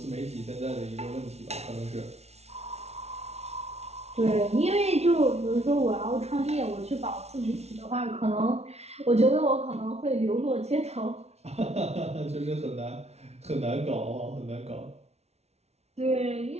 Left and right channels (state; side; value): late; left; 0.31 ms